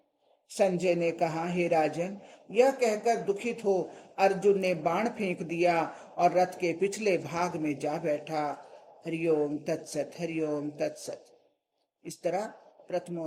संजय ने कहा, हे राजन, यह कहकर दुखित हो अर्जुन ने बाण फेंक दिया और रथ के पिछले भाग में जा बैठा। हरिओम तत्सत, हरिओम तत्सत। इस तरह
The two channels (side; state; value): both; identical; correlation 1.00